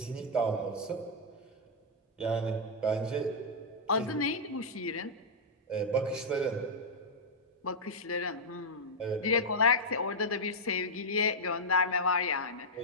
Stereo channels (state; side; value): normal; both; correlation -0.06